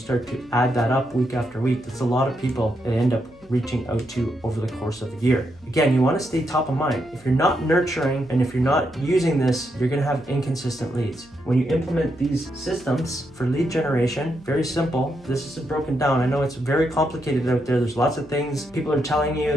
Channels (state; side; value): noise; right; hum, 27 dB below the sound